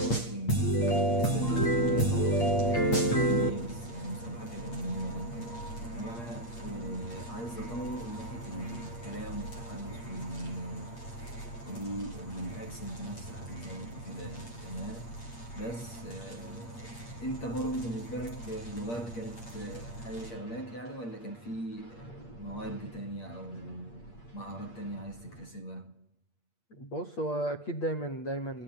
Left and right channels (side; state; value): right; late; 8.6 ms